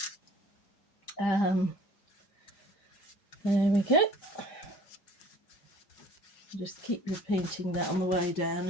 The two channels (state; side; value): late; right; 5.0 ms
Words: There we go. Just keep repeating that on the way down,